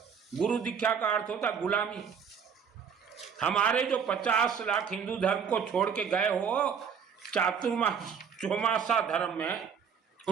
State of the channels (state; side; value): quieter; left; 7.1 dB